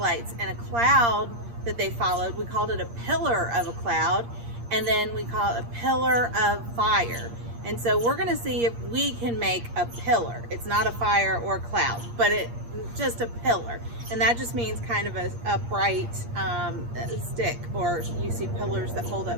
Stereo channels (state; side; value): late; left; 8.6 ms